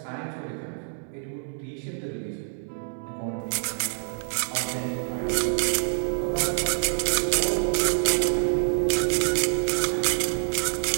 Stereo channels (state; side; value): silent; left; digital silence